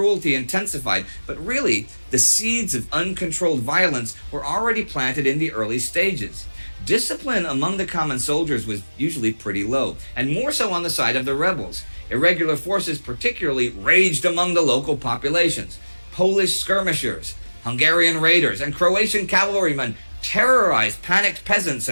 intensified. But really, the seeds of uncontrolled violence were already planted in the early stages. Discipline among the common soldiers was usually pretty low, and more so on the side of the rebels. Irregular forces particularly raged among the local populations. Polish skirmishers, Hungarian raiders, and Croatian cavalrymen terrorized panicked peasants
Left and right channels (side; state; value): both; inverted; correlation -1.00